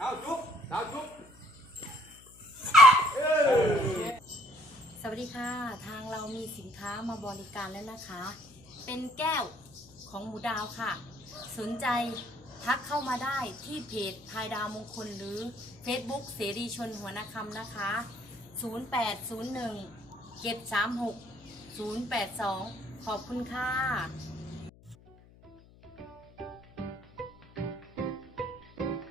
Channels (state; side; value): noise; left; hum, 24 dB below the sound